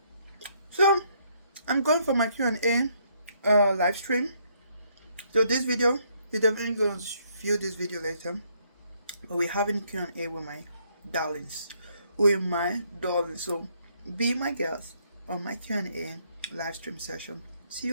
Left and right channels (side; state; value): both; inverted; correlation -0.70